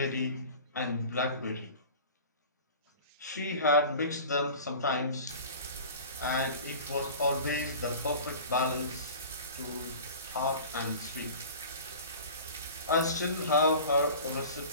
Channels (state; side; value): inverted; both; correlation -0.39